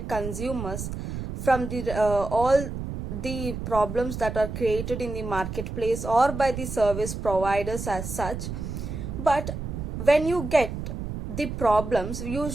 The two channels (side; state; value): right; noise; rumble, 6 dB below the sound